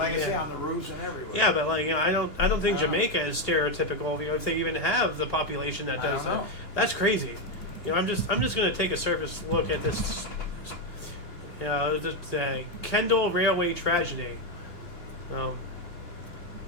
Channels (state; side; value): late; right; 2.8 ms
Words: I say, on the roofs and everywhere. Yeah, but like I don't think Jamaica is stereotypical. If they even have the population that does that, that's crazy. I'm just gonna take a surface look at this. The Kendall Railway tragedy.